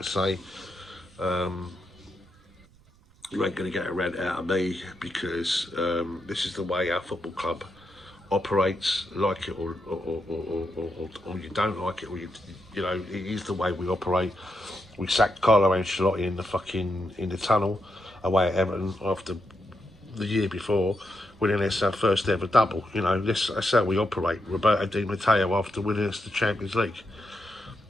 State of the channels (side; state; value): right; noise; rumble, 29 dB below the sound